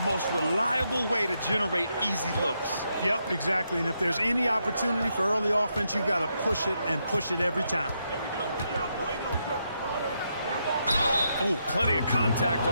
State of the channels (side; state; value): both; inverted; correlation -0.81